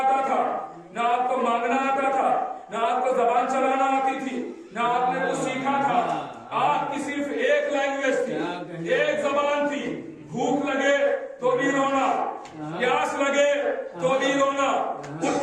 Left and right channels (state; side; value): identical; both; correlation 1.00